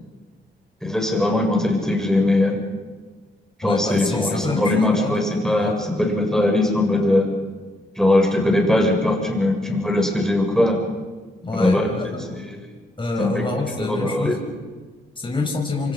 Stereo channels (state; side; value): normal; both; correlation 0.76